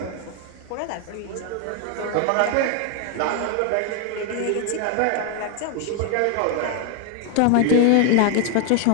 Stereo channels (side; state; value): both; different; correlation 0.01